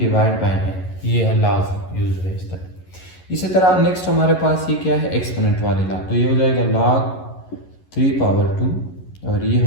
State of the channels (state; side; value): late; right; 11 ms